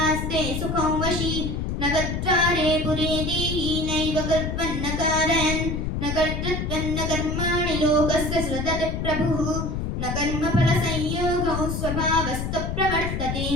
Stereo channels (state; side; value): noise; left; rumble, 2 dB below the sound